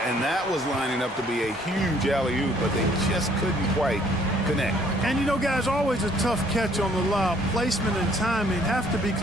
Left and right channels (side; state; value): both; normal; correlation 0.61